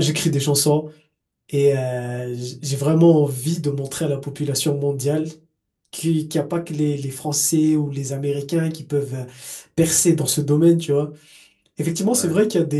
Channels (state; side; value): identical; both; correlation 1.00